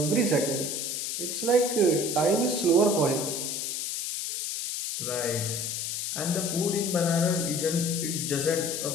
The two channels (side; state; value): left; noise; hiss, 3 dB below the sound